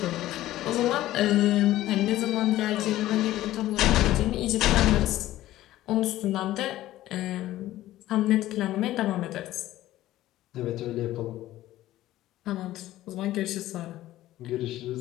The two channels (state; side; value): quieter; right; 14.9 dB